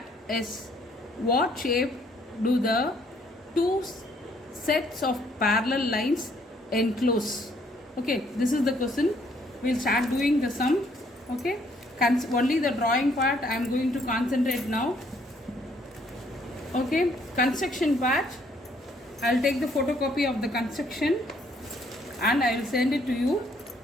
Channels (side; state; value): both; normal; correlation 0.66